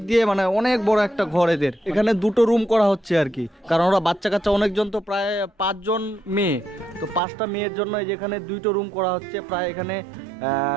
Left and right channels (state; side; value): drops out; left; at 7.2 s